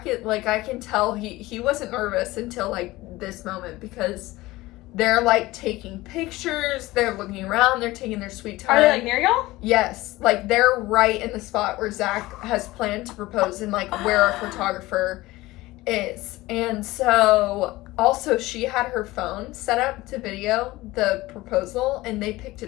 like, I can tell he wasn't nervous until like this moment, because they're like taking pictures, they're looking around, they're taking their sweet time. Are they like near y'all? Yes. Like, they're right in the spot where Zach has planned to propose, and like where our photographer is. And so also she had her phone set up to video the proposal, and they picked it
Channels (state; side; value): quieter; right; 18.9 dB